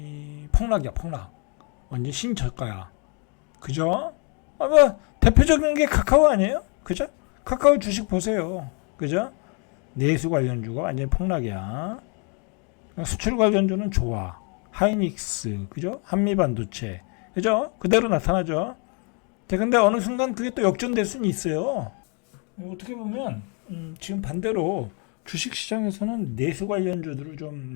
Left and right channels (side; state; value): right; quieter; 35.6 dB